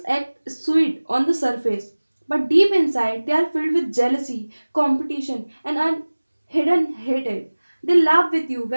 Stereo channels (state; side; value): inverted; both; correlation -1.00